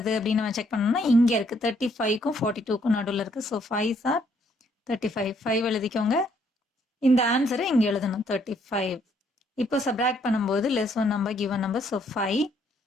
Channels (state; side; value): normal; both; correlation 0.69